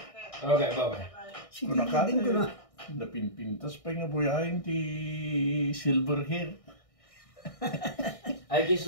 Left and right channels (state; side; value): late; right; 1.6 ms